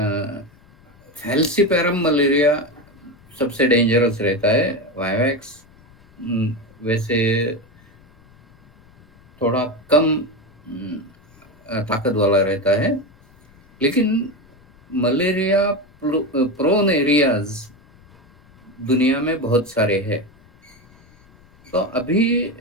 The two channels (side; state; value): left; noise; rumble, 28 dB below the sound